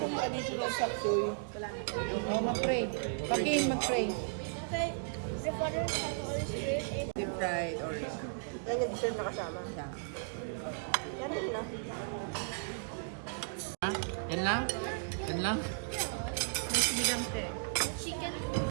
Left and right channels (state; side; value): silent; left; digital silence